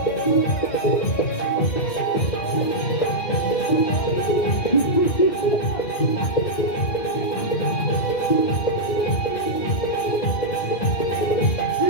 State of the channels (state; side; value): late; right; 2.4 ms